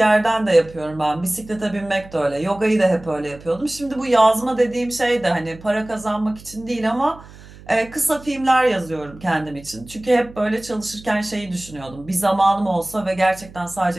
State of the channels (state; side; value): noise; right; hum, 20 dB below the sound